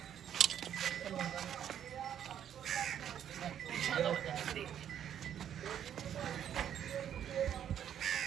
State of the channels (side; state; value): left; quieter; 9.6 dB